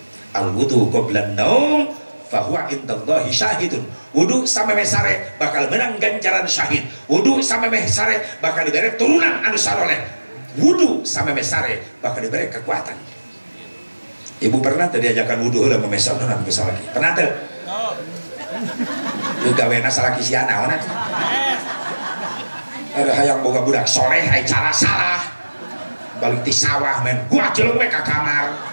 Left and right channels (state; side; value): inverted; both; correlation -1.00